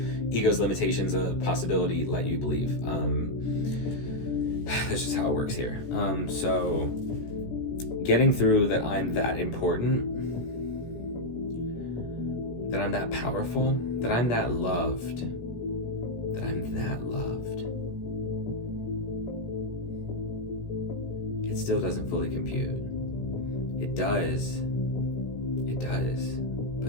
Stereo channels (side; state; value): right; late; 17 ms